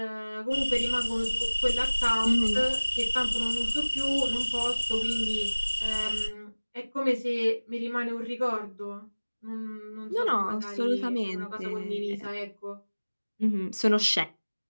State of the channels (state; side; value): inverted; both; correlation -1.00